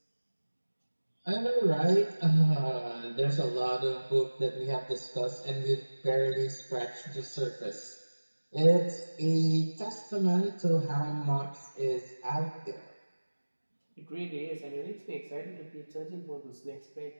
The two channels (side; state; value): both; inverted; correlation -1.00